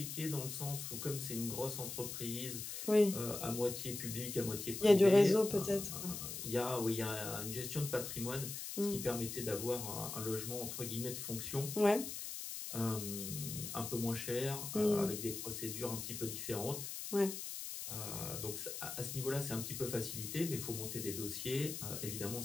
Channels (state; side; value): noise; left; hiss, 6 dB below the sound